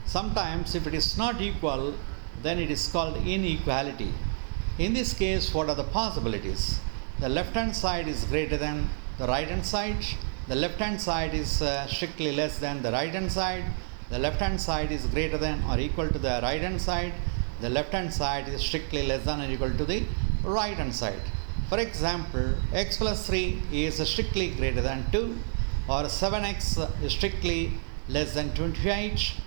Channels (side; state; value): left; silent; digital silence